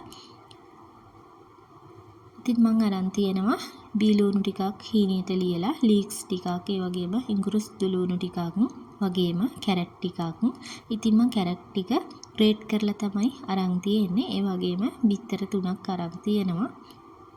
ඉතින් මම අරන් තියෙනවා බීලුණු ටිකක් හීනියට ලියලා ලීක්ස් ටිකක් ඒ වගේම ඉඟුරු දුලුණු ටිකක් වගේම කැරට් ටිකක්. ඉතින් මම කැරට් ටික ග්‍රේට් කරලා තමයි අරන් තියෙන්නේ. ඒ වගේම බිත්තර 3ක් අරන් තියෙනවා.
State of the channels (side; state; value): both; identical; correlation 1.00